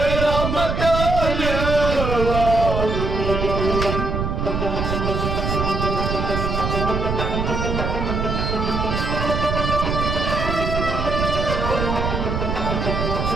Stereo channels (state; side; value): noise; right; rumble, 1 dB below the sound